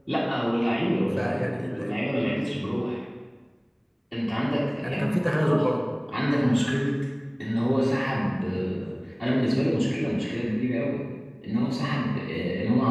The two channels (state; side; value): identical; both; correlation 1.00